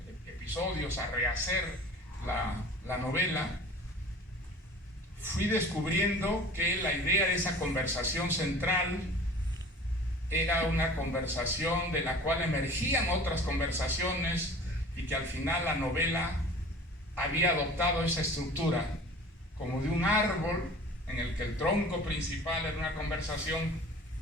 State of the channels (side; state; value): both; normal; correlation 0.43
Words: episodios, a rehacer la novela, fui descubriendo que la idea de esa conversación central era una conversación de la cual emergían otras conversaciones y que al final la novela había adoptado esa estructura como de un árbol en el que el tronco principal era una conversación,